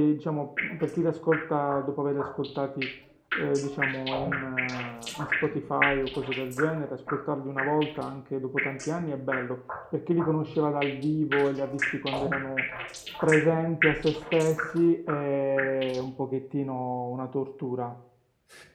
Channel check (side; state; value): both; identical; correlation 1.00